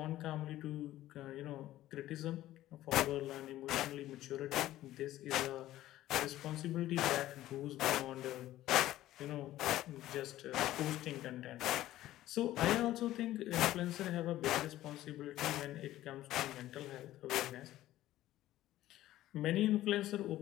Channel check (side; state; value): right; quieter; 14.6 dB